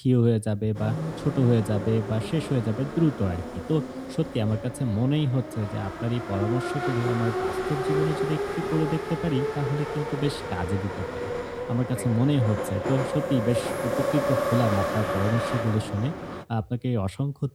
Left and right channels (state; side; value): identical; both; correlation 1.00